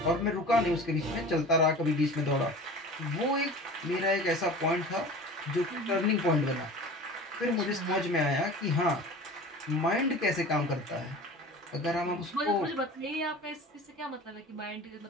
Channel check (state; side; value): normal; both; correlation 0.38